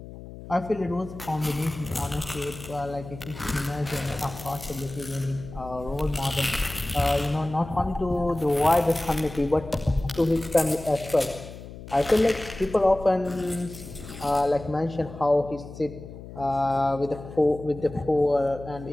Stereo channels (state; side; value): noise; left; hum, 14 dB below the sound